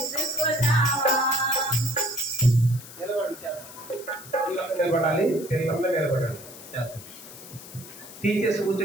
నిలబడాలి, పిల్లలందరూ నిలబడాలి. చేద్దాం. టీచర్స్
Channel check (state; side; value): noise; left; hiss, 16 dB below the sound